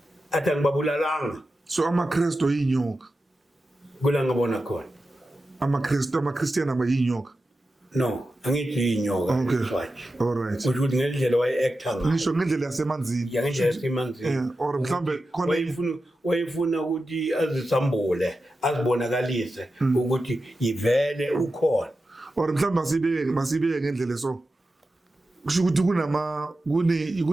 athi angibabulalanga so amakristo yinyoka kula ngabona khona amaKristiyan abayinyoka no angithi inyoka okay all right ukuthi ngendlela waye-acta ngayo ngisho ngendlela yasemanzini ngendlela yasemanzini or mhlambe khona wayefuna ukuthi azisambule azibonakalise ukuthi yivele ukhona or mhlambe masibeke ngendlela so kusho ukuthi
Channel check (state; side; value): normal; both; correlation 0.91